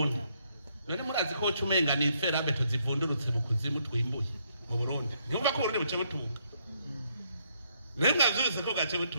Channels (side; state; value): both; inverted; correlation -0.73